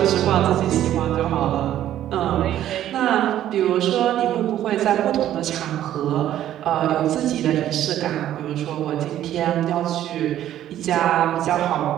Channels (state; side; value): quieter; left; 12.0 dB